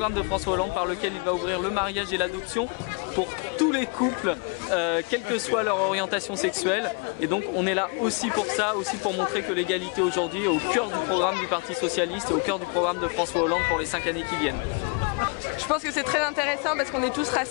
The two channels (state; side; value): quieter; right; 33.7 dB